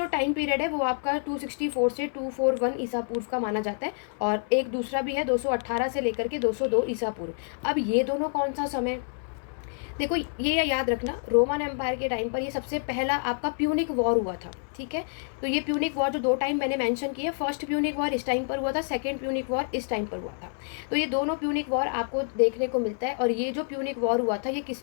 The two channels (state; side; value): silent; right; 57 dB below the other